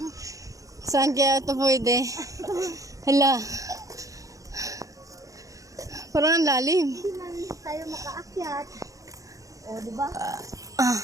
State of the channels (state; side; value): late; left; 0.16 ms